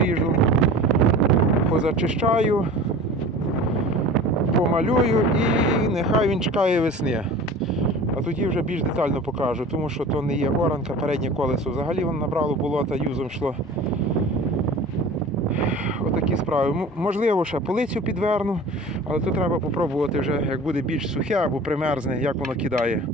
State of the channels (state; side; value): normal; both; correlation 0.40